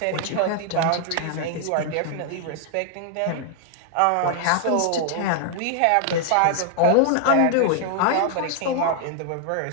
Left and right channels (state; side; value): different; both; correlation 0.00